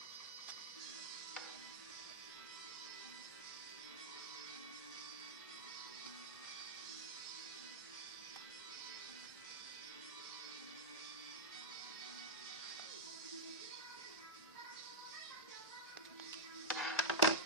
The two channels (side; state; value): both; normal; correlation -0.09